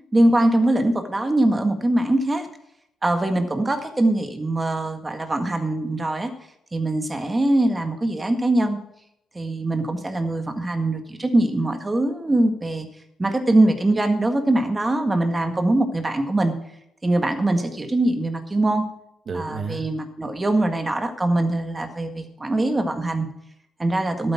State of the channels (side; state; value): both; normal; correlation 0.94